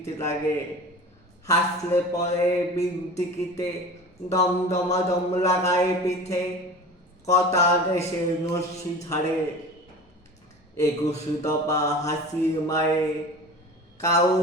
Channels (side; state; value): both; normal; correlation 0.37